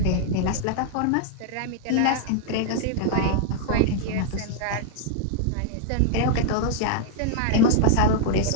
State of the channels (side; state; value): both; different; correlation 0.00